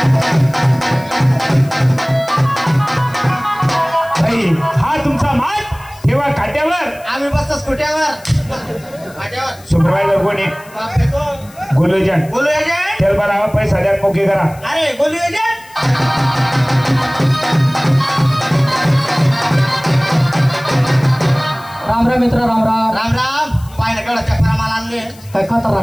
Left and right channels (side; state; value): left; noise; hiss, 24 dB below the sound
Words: भाई हा तुमचा माल ठेवा खाट्यावर. आम्ही बसतो स्कुट्यावर. सुपरवायझर कोणी. बापरे कोण. गोलू एजंट. बोलू एजंट. तेल भरा पैसा द्या मोके करा. अरे बोलू एजंट. राम राम मित्र राम राम. राम राम. पाहिलं केवढा चक्रा माल आणले. काय